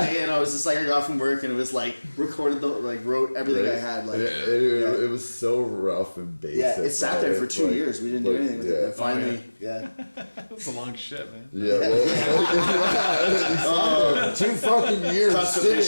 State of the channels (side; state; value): both; inverted; correlation -1.00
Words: day and I was just like I got from work and it was like recorded wrote everything I had like It was so rough and basic. yeah it sat there for right? 2 Like- years. We didn't do like, anything with it. yeah. And finally, That's a long shit, man. Yeah, well, 2 fucking years. constipation